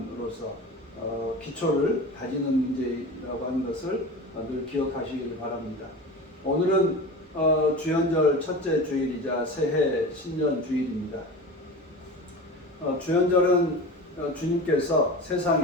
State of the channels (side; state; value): both; normal; correlation 0.32